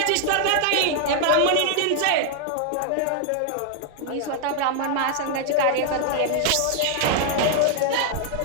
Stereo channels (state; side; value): different; both; correlation 0.00